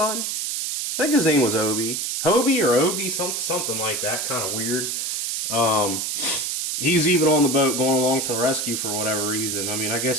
I think his name was Obi. Hobie or Obi, something like that, kind of weird. He's even on the boat going along for the rescue for whatever reason. I mean, I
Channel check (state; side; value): noise; right; hiss, 2 dB below the sound